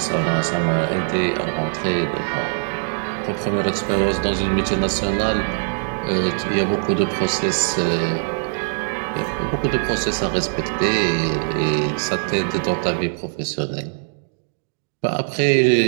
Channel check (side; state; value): left; silent; digital silence